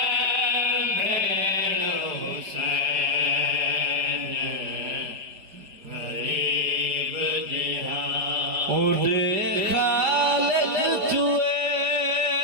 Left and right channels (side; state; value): left; late; 5.0 ms